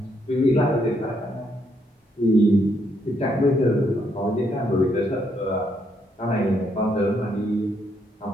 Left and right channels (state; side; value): normal; both; correlation 0.74